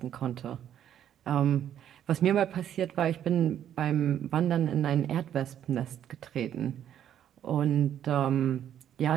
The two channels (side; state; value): left; quieter; 10.2 dB